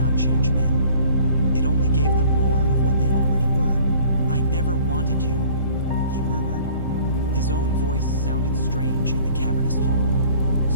change men. It only gave them more of what they already were. "I never wanted you," he murmured. His own voice sounded strange in the cavernous hall,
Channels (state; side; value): inverted; both; correlation -0.51